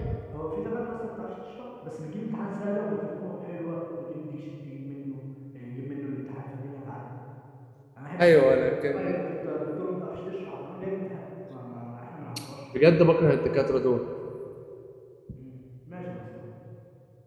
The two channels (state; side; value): identical; both; correlation 1.00